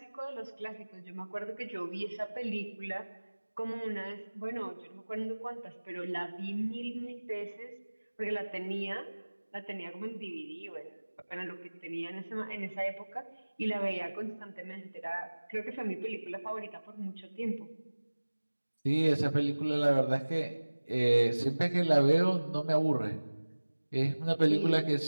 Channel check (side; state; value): both; inverted; correlation -1.00